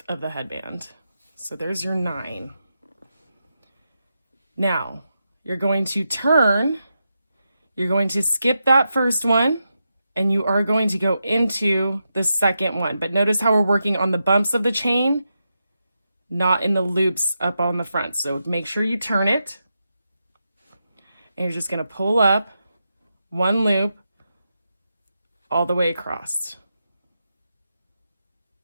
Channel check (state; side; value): inverted; both; correlation -0.87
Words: of the headband. So there's your 9. Now you're going to turn, you're going to skip that first one, and you are going to go into the second one. But notice how we're working on the bumps of the chain, not in the loops up on the front. So make sure you turn it, and you're just going to pull up 1 loop all the way across.